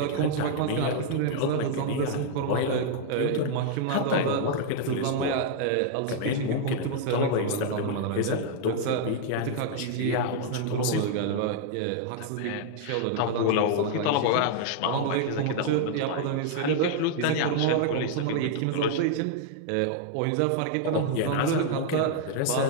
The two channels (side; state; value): both; different; correlation -0.01